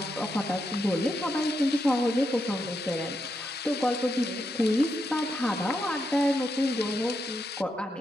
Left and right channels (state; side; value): normal; both; correlation 0.83